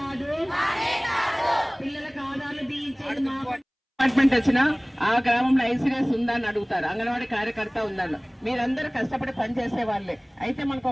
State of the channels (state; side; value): identical; both; correlation 1.00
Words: పిల్లలకు ఆధార్లు దించేది మా పని. డిపార్ట్మెంట్ వచ్చినా ఆ గ్రామంలో ఐసీఎస్ ఉందా అని అడుగుతారు, అంగన్వాడీ కార్యకర్త ఉందని. మీరందరూ కష్టపడి పనిచేసే వాళ్ళే. అయితే మనకు